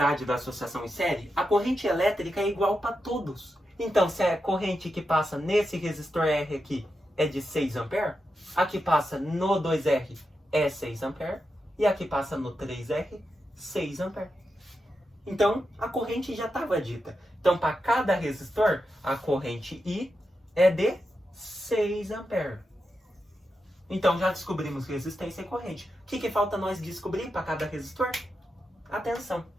da associação em série, a corrente elétrica é igual para todos. Então, se a corrente que passa nesse resistor R aqui é de 6 A, a que passa no 2R é 6 A, e a que passa no 3R, 6 A. Então, a corrente já estava dita. Então, para cada resistor, a corrente I é de 6 A. Então, já descobrimos resistência e corrente. O que falta nós descobrir para cada resistor? A tensão.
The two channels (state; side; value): normal; both; correlation 0.88